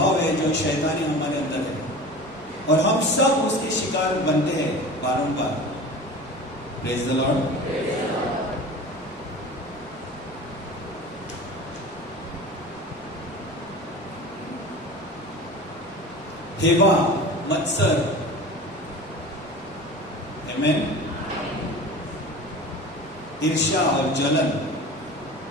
है जो शैतानी हमारे अंदर है, और हम सब उसके शिकार बनते हैं बारंबार। Praise the Lord. हेवा, मत्सर, आमीन, ईर्ष्या और जलन,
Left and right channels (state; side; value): normal; both; correlation 0.36